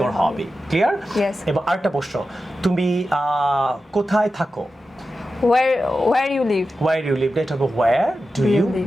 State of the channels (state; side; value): normal; both; correlation 0.92